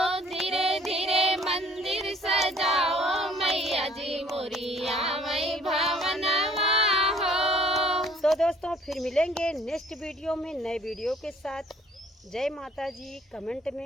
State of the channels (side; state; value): both; normal; correlation 0.57